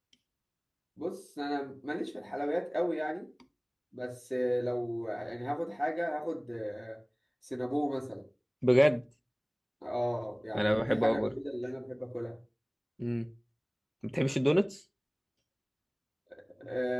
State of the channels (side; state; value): both; identical; correlation 1.00